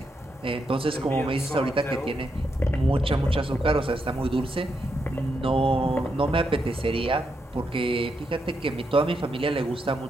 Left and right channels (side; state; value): both; normal; correlation 0.81